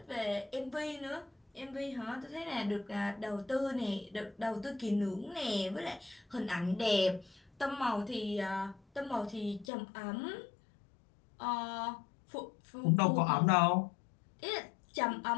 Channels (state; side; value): drops out; right; at 9.7 s